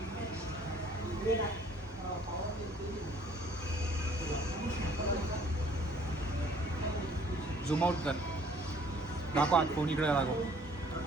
झूम आउट कर. दाखव आत फोन इकडे दाखव.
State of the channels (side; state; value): both; normal; correlation 0.58